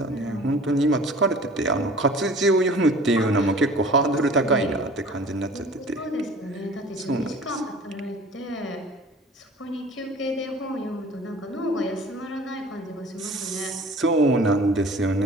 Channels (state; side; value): normal; both; correlation 0.45